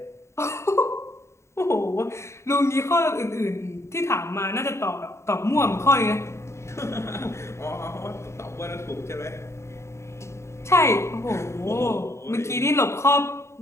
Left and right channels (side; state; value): right; late; 0.13 ms